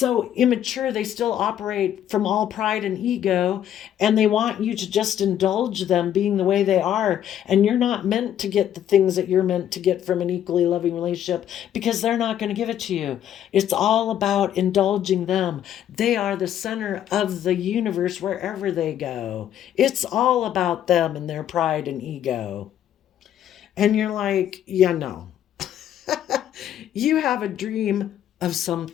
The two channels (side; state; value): right; quieter; 10.6 dB